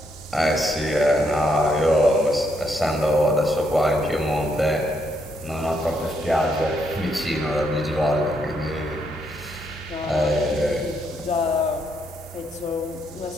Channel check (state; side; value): normal; both; correlation 0.76